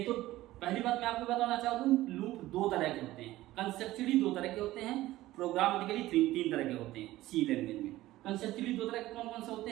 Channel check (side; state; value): left; quieter; 16.3 dB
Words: तो पहली बात मैं आपको बताना चाहता हूँ, लूप 2 तरह के होते हैं, कंसेप्चुअली 2 तरह के होते हैं, प्रोग्रामेटिकली 3 तरह के होते हैं सी लैंग्वेज में। कंसेप्चुअली 2 तरह के कौन कौन से होते